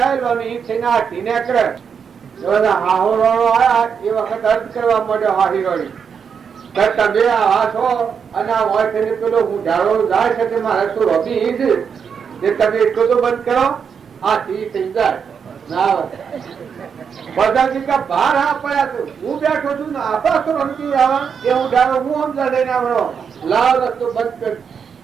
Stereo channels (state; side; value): quieter; left; 6.7 dB